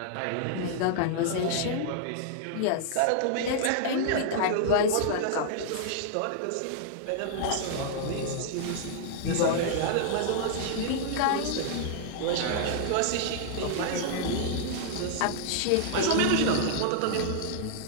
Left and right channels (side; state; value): both; different; correlation -0.01